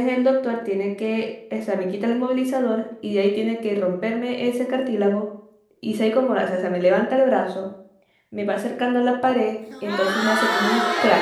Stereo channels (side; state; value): both; identical; correlation 1.00